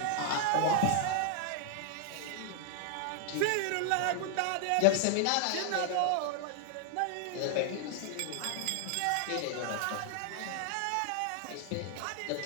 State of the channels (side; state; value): both; different; correlation 0.00